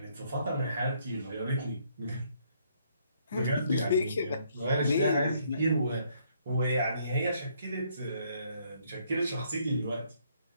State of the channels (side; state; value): both; inverted; correlation -0.68